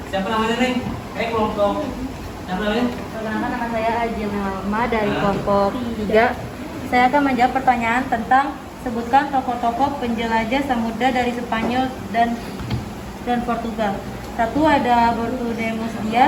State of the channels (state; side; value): identical; both; correlation 1.00